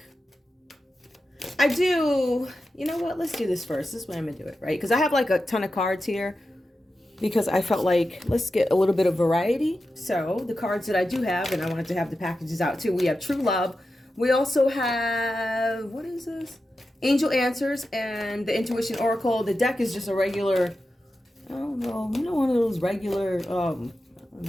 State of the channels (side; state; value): both; normal; correlation 0.91